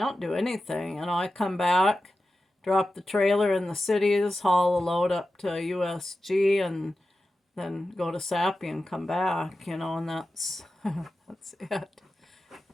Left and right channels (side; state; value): both; normal; correlation 0.93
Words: do anything. I come back, drop the trailer in the cities, haul a load up to USG, and then go to Sappy and come back, and that's that's it.